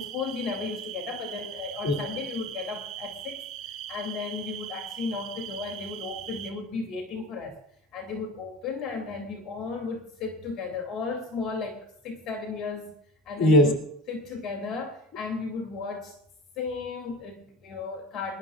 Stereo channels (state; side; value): normal; both; correlation 0.34